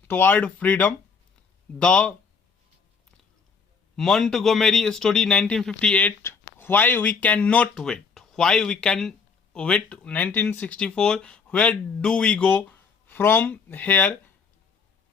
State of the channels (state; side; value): quieter; right; 5.4 dB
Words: toward freedom, the Montgomery story 1958, why we can not wait, why we can wait 1964, where do we go from here,